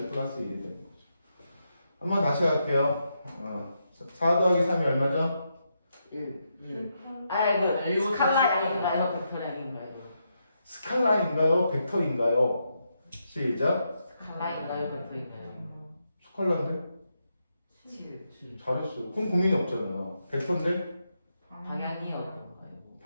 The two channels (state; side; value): inverted; both; correlation -0.82